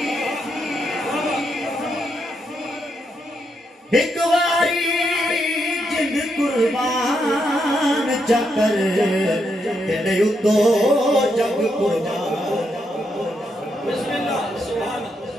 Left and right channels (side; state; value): both; normal; correlation 0.80